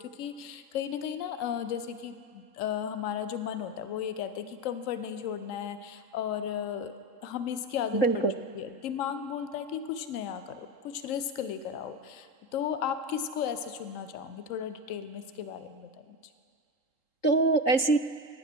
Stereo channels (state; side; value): late; right; 3.8 ms